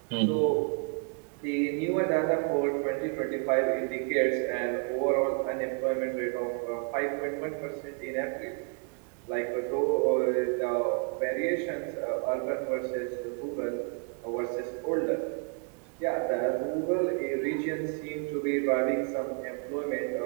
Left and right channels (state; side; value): quieter; left; 38.5 dB